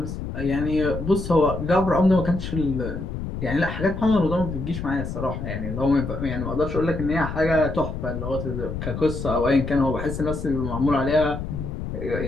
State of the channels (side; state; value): left; noise; rumble, 6 dB below the sound